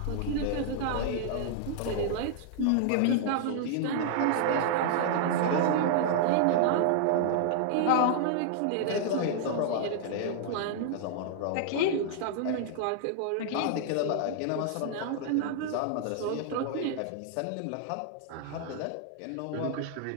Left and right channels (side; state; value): both; different; correlation -0.01